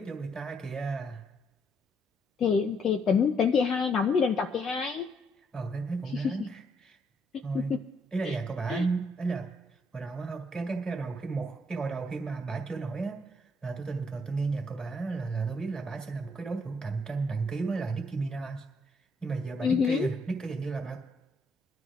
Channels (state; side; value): normal; both; correlation 0.73